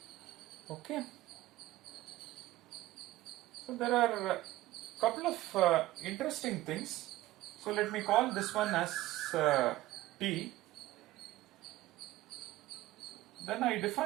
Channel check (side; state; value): left; quieter; 16.6 dB